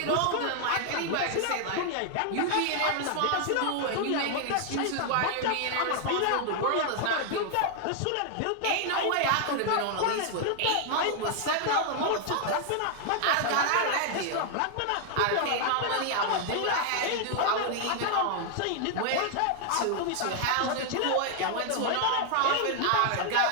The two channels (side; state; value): both; different; correlation 0.00